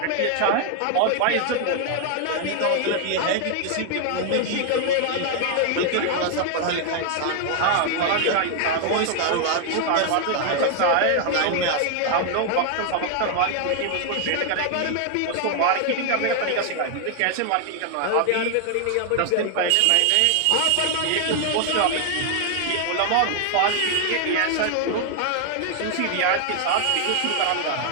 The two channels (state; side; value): different; both; correlation 0.00